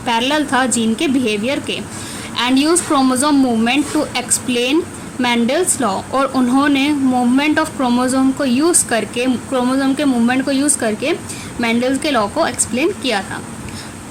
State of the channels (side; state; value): both; identical; correlation 1.00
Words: था जीन के बिहेवियर के, and use chromosome movement to explain Mendel's law, और उन्होंने मूवमेंट ऑफ क्रोमोसोम को यूज़ करके, क्रोमोसोम के मूवमेंट को यूज़ करके मैंडल्स के लॉ को एक्सप्लेन किया था।